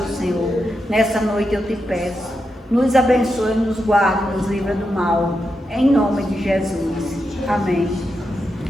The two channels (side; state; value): both; normal; correlation 0.86